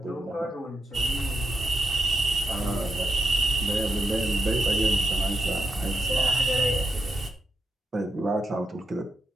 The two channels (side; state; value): both; normal; correlation 0.82